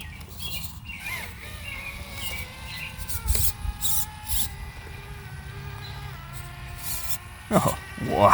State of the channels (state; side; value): identical; both; correlation 1.00